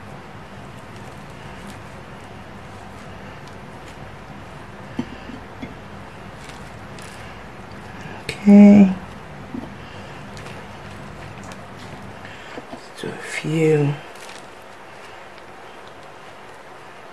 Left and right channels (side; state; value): both; identical; correlation 1.00